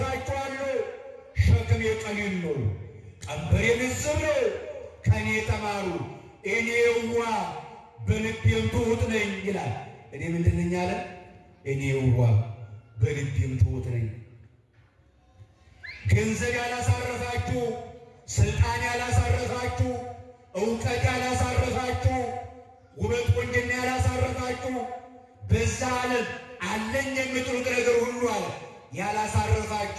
ሸክም የቀሊል ነው፣ ቀንበሬ ልዝብ ነው፣ ከኔ ተማሩ እኔ የዋህ በልቤም ትሑት ነኝ ይላል። እኔ ምንድን ነኝ አለ? እኔ የዋህ በልቤም ትሑት ነኝ። ገንዘብ ያላሳረፋችሁ፣ ስልጣን ያላሳረፋችሁ፣ እውቀት ያላሳረፋችሁ፣ ውበት ቆንጅና ያላሳረፋችሁ፣ በዛ ዓለም አለኝ የምትሉት ነገር ሁሉ አለ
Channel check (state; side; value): identical; both; correlation 1.00